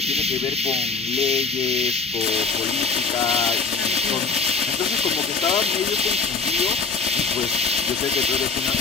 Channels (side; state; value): right; quieter; 4.6 dB